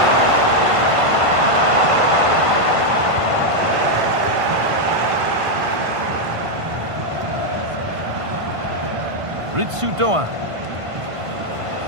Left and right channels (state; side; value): late; left; 1.5 ms